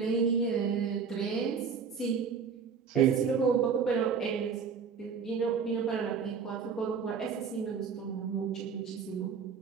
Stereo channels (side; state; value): left; quieter; 6.2 dB